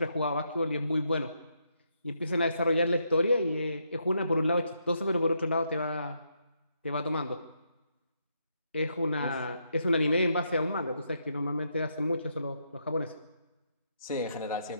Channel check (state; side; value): inverted; both; correlation -0.78